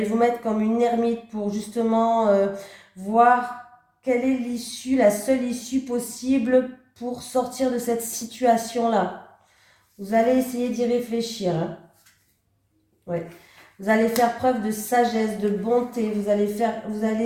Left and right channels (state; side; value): identical; both; correlation 1.00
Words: vous mettre comme une ermite pour justement voir quelle est l'issue, la seule issue possible pour sortir de cette situation-là. Vous allez essayer d'y réfléchir. Hein. Ouais. Vous allez faire preuve de sagesse, de bonté. Vous allez